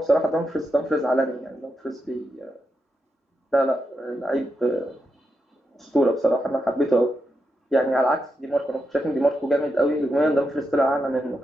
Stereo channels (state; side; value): normal; both; correlation 0.85